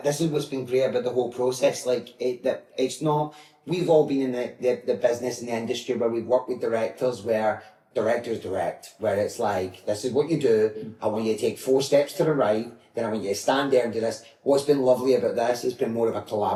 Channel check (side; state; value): both; identical; correlation 1.00